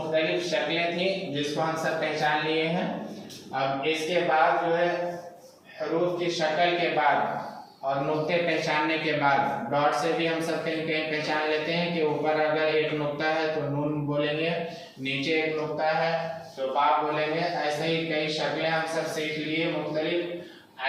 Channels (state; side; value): identical; both; correlation 1.00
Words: शक्लें थी जिसको हम सब पहचान लिए हैं। अब इसके बाद जो है हरूफ की शक्ल के बाद और नुक्ते पहचानने के बाद, डॉट से भी हम सब कहीं कहीं पहचान लेते हैं कि ऊपर अगर एक नुक्ता है तो नून बोलेंगे, नीचे एक नुक्ता है तो बा बोलेंगे। ऐसे ही कई शक्लें हम सब सीख लिए मुख्तलिफ,